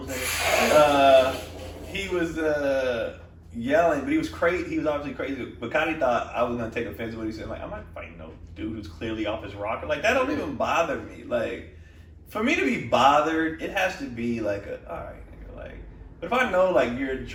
nigga. He was yelling, but he was crazy. He was obviously crazy. But Cotty thought I was gonna take offense to what he said. Like, I'm not fighting no dude who's clearly off his rocker. Like, that don't even bother me. Like, for me to be bothered, it has to be like all right, nigga. Like, but if I know like you're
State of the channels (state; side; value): identical; both; correlation 1.00